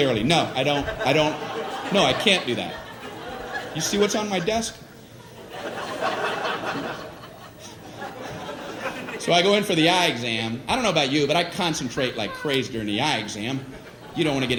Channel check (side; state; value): both; identical; correlation 1.00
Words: No, I don't. No, I can't do that. You see what's on my desk? So I go in for the eye exam. I don't know about you, but I concentrate like crazy during the eye exam. You don't want to